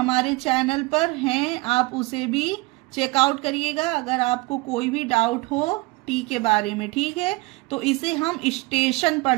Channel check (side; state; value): left; quieter; 23.6 dB